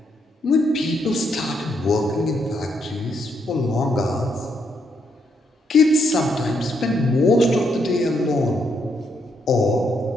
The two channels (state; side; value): normal; both; correlation 0.76